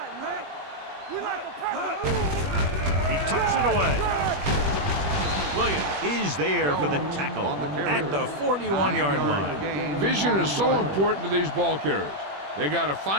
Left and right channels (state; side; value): late; left; 21 ms